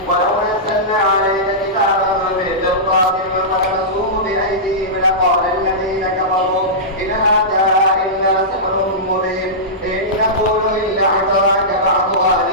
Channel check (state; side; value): normal; both; correlation -0.16